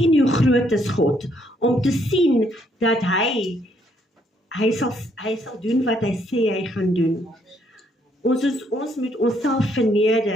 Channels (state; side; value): normal; both; correlation 0.70